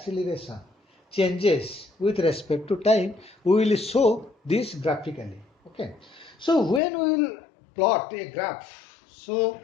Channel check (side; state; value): right; drops out; at 6.8 s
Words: changes with respect to time, we will show this graphically. Okay. So when we will plot a graph, so